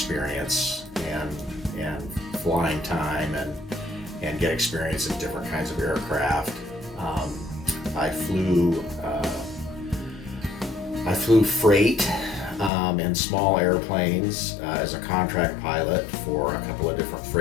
and flying time, and get experience in different kinds of aircraft. I flew freight and small airplanes as a contract pilot for a couple of different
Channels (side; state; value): right; drops out; at 12.7 s